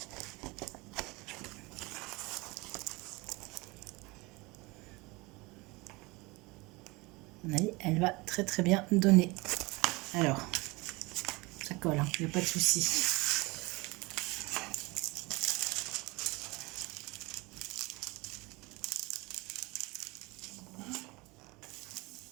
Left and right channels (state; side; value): quieter; left; 24.4 dB